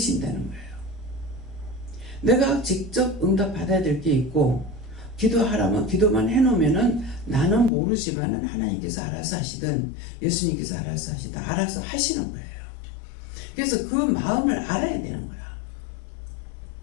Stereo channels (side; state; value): right; drops out; at 7.7 s